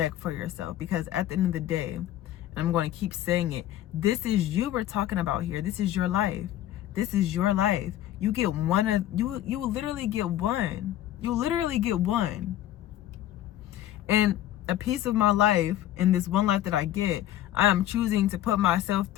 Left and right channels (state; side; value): quieter; right; 12.8 dB